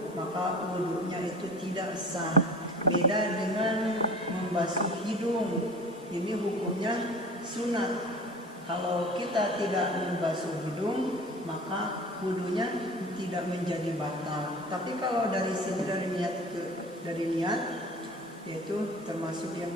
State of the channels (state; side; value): normal; both; correlation 0.40